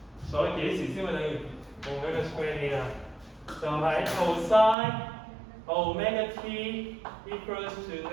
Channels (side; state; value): left; drops out; at 4.8 s